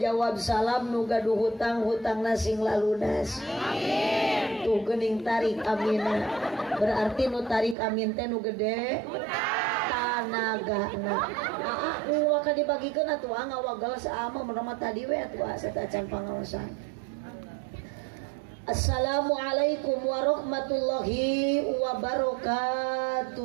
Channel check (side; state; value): left; drops out; at 7.8 s